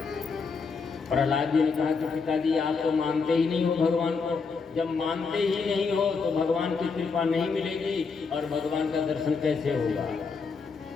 प्रहलाद जी ने कहा कि पिताजी, आप तो मानते ही नहीं हो भगवान को। जब मानते ही नहीं हो तो भगवान की कृपा नहीं मिलेगी और भगवान का दर्शन कैसे होगा।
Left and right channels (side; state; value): right; quieter; 5.0 dB